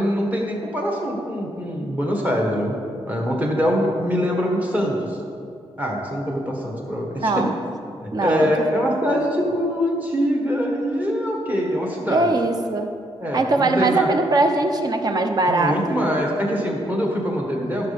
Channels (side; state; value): both; normal; correlation 0.73